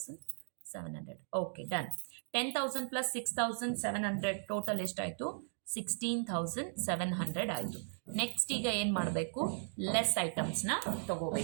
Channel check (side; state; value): left; silent; digital silence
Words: Okay, done. 10,000 ಪ್ಲಸ್ 6,700 ಟೋಟಲ್ ಎಷ್ಟಾಯಿತು? 16,700 ಆಯಿತು. ನೆಕ್ಸ್ಟ್ ಈಗ ಏನು ಮಾಡಬೇಕು? ಲೆಸ್ ಐಟಮ್ಸ್ನ